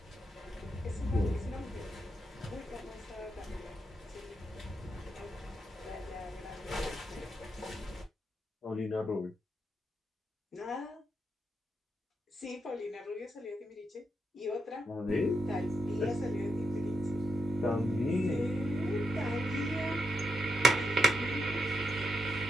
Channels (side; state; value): both; normal; correlation 0.83